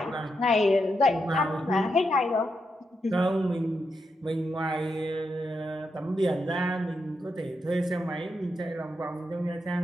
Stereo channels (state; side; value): normal; both; correlation 0.84